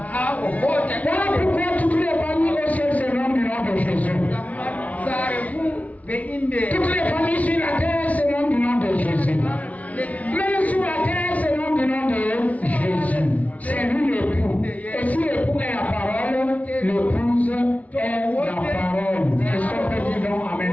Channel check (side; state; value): right; late; 0.070 ms